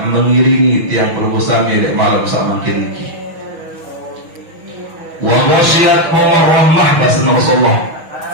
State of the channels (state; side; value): late; left; 6.2 ms